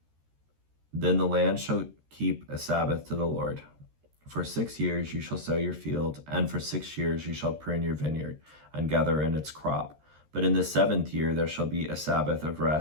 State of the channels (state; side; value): late; left; 13 ms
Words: then the land shall keep a Sabbath to the Lord. For 6 years you shall sow your field, and for 6 years you shall prune your vineyard, and gather in its crop. But in the 7th year there shall be a Sabbath of